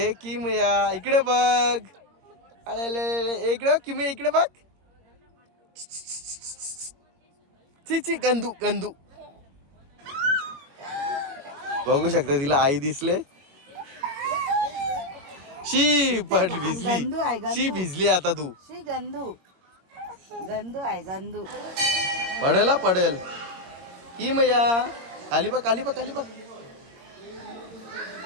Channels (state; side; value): late; left; 22 ms